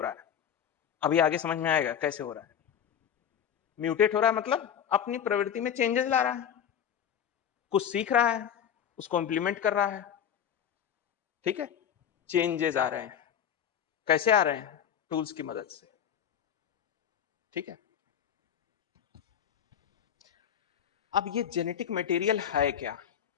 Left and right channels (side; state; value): right; quieter; 8.9 dB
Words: रहा है। अभी आगे समझ में आएगा कैसे हो रहा है। म्यूटेट हो रहा है मतलब अपनी प्रवृत्ति में चेंजेस ला रहा है, कुछ सीख रहा है, उसको इंप्लीमेंट कर रहा है। ठीक है, चेंजेस आ रहे हैं। कैसे आ रहे हैं, टूल्स की मदद से। ठीक है, अब ये जेनेटिक मटेरियल है क्या,